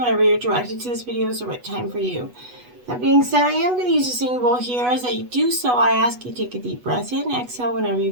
you're directed to this video is the right time for you. That being said, I am going to use a singing bowl here. As I do so, I ask you to take a deep breath in, exhale whenever you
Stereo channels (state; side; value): late; left; 8.1 ms